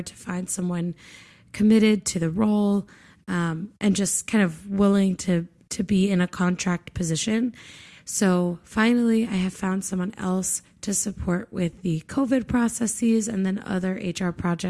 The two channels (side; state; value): both; identical; correlation 1.00